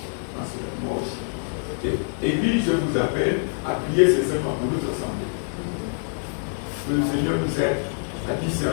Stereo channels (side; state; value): right; silent; digital silence